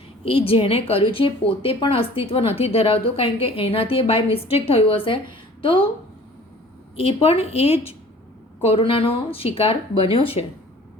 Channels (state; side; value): normal; both; correlation 0.49